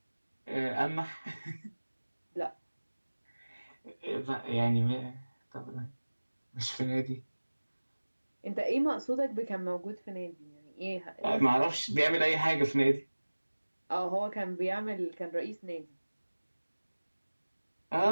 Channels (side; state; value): both; inverted; correlation -1.00